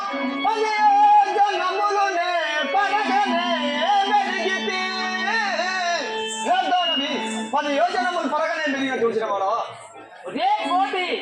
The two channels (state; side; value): identical; both; correlation 1.00